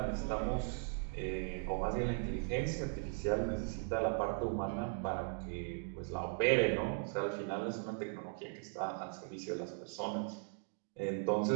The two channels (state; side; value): silent; left; 52 dB below the other